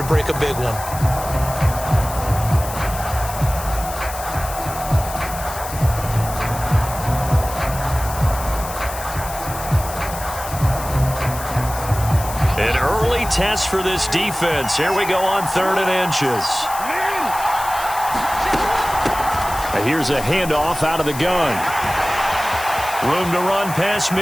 break a big one. An early test for this defense. Here we go on 3rd and inches. Here's a handoff out of the gun. Room to run past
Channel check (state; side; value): noise; left; hiss, 11 dB below the sound